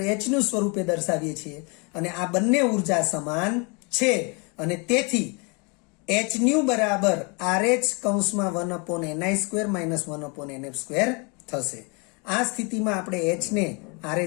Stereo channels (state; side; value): quieter; right; 31.9 dB